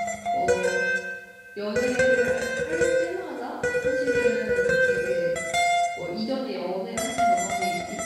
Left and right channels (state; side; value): identical; both; correlation 1.00